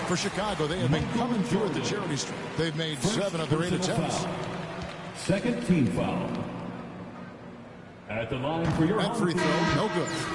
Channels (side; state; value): both; identical; correlation 1.00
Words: For Chicago, they have been coming through at the charity stripe. They've made 7 of their 8 attempts. Second team foul. At the line for your that free throw, no good.